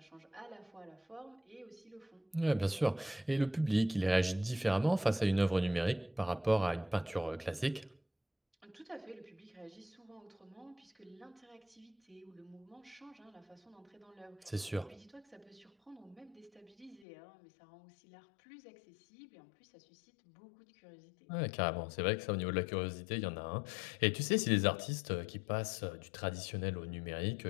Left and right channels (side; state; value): right; drops out; at 17.1 s